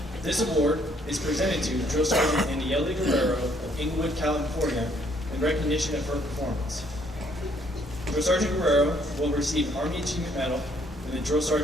This award is presented to Drill Sergeant Aniele Guerrero of Inglewood, California, in recognition of her performance. Drill Sergeant Guerrero will receive an Army Achievement Medal and the Drill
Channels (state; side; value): normal; both; correlation 0.66